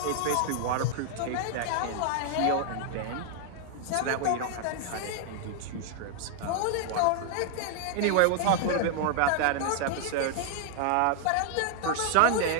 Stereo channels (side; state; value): both; different; correlation 0.00